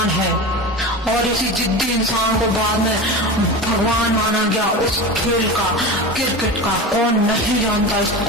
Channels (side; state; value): both; normal; correlation 0.27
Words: है, और इसी जिद्दी इंसान को बाद में भगवान माना गया उस खेल का, क्रिकेट का। कौन नहीं जानता